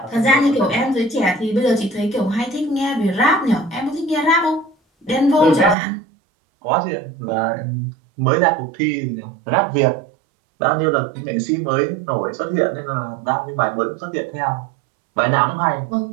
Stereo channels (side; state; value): left; drops out; at 5.8 s